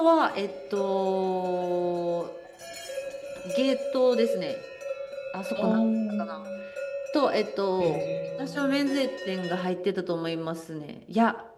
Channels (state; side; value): identical; both; correlation 1.00